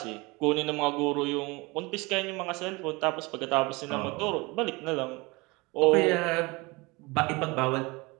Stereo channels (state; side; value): quieter; left; 25.0 dB